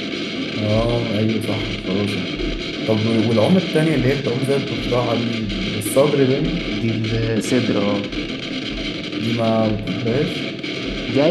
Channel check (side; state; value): both; identical; correlation 1.00